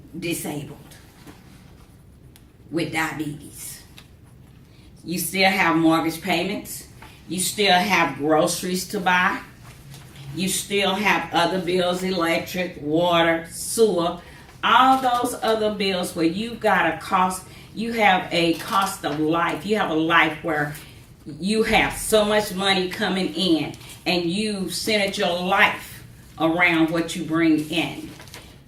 disabled with diabetes. You still have mortgage payments. You still have groceries to buy. You still have other bills, electric, water, sewer, all those other bills where you've got a cost. You have a cost of life. You have a life where you have so much money coming in, and you centered your life around what you bring in.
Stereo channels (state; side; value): identical; both; correlation 1.00